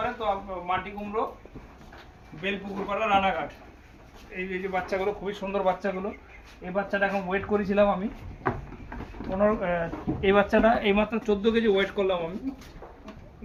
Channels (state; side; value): identical; both; correlation 1.00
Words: তো মাটি কুমড়ো, বেলপুকুরপাড়া, রানাঘাট। এই যে বাচ্চাগুলো খুবই সুন্দর বাচ্চাগুলো। এই বাচ্চাটা এখন ওয়েট করেছিলাম আমি 15, এই বাচ্চাটা এইমাত্র 14 কেজি ওয়েট করলাম আমি,